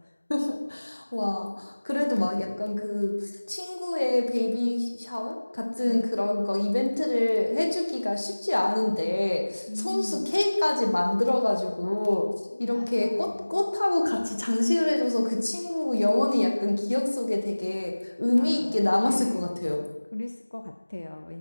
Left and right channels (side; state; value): both; inverted; correlation -1.00